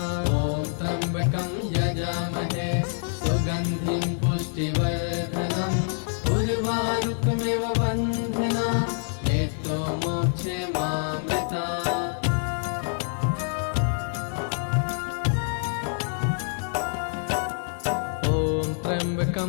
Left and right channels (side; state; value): right; silent; 61 dB below the other